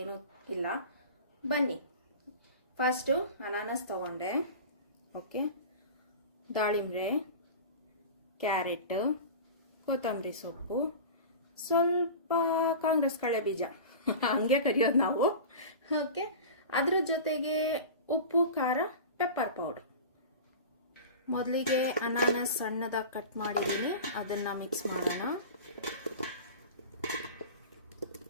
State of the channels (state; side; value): inverted; both; correlation -0.33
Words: ಏನೂ ಇಲ್ಲ. ಬನ್ನಿ, ಫಸ್ಟು ಅನಾನಸ್ ತಗೊಂಡೆ. ಓಕೆ, ದಾಳಿಂಬೆ, ಕ್ಯಾರೆಟ್, ಕೊತ್ತಂಬರಿ ಸೊಪ್ಪು, ಸ್ವಲ್ಪ ಕಾಂಗ್ರೆಸ್ ಕಳೆ ಬೀಜ ಹಂಗೆ ಕರಿಯೋದು ನಾವು. ಓಕೆ, ಅದ್ರ ಜೊತೆಗೆ ಉಪ್ಪು, ಖಾರ, ಪೆಪ್ಪರ್ ಪೌಡರ್. ಮೊದಲಿಗೆ ಅನಾನಸ್ ಸಣ್ಣದಾಗಿ ಕಟ್ ಮಾಡಿದ್ದೀನಿ, ಅದನ್ನು ಮಿಕ್ಸ್ ಮಾಡೋಣ.